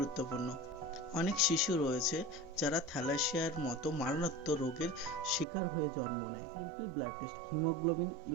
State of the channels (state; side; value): drops out; left; at 5.5 s